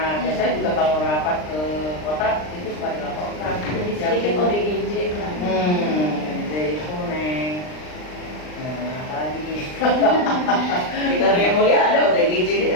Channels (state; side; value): late; right; 39 ms